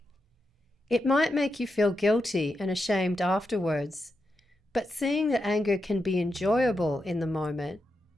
It might make you feel guilty and ashamed afterwards, but seeing that anger can be enjoyable in the moment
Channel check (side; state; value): both; normal; correlation 0.86